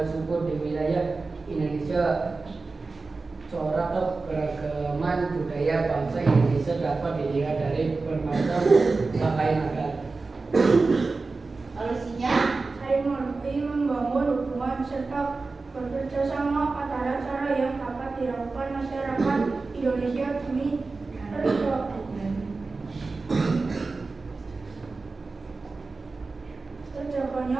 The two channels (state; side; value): quieter; left; 3.9 dB